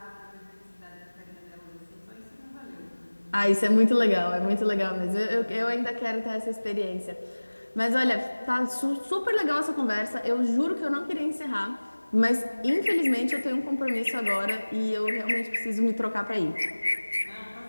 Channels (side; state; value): both; inverted; correlation -1.00